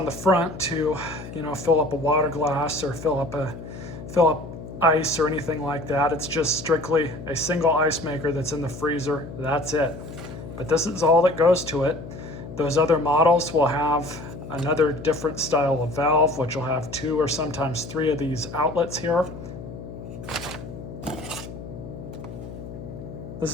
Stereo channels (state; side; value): noise; left; hum, 12 dB below the sound